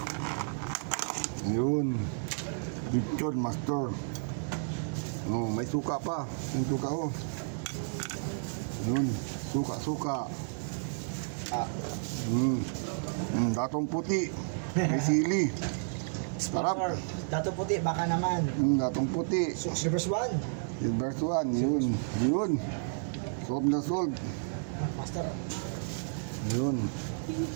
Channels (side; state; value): left; silent; 57 dB below the other